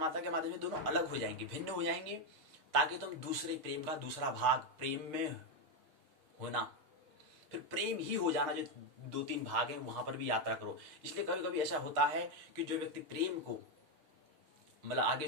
के माध्यम से दोनों अलग हो जाएंगे, भिन्न हो जाएंगे, ताकि तुम दूसरे प्रेम का दूसरा भाग, प्रेम में होना, फिर प्रेम ही हो जाना, जो 2-3 भाग हैं वहां पर भी यात्रा करो। इसलिए कभी कभी ऐसा होता है कि जो व्यक्ति प्रेम को मतलब आगे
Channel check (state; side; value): late; left; 6.5 ms